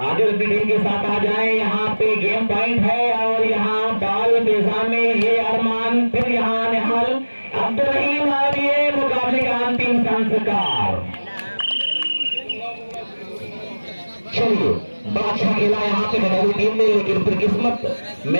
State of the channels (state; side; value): inverted; both; correlation -1.00